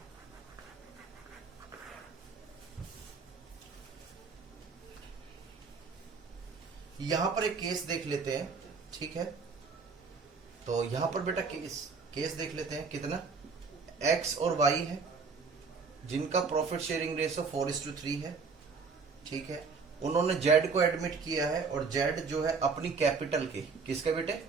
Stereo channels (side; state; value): left; quieter; 4.8 dB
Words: यहां पर एक केस देख लेते हैं, ठीक है? तो यहां पर बेटा केस देख लेते हैं। कितना? एक्स और वाई है जिनका प्रॉफिट शेयरिंग रेशो 4:3 है, ठीक है? उन्होंने जेड को एडमिट किया है और जेड जो है अपनी कैपिटल के, किसके बेटे?